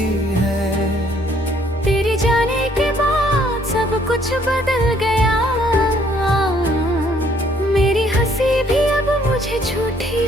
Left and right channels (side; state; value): both; normal; correlation 0.64